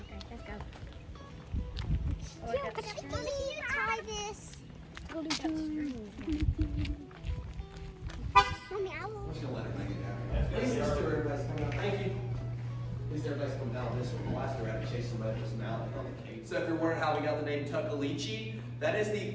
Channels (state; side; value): identical; both; correlation 1.00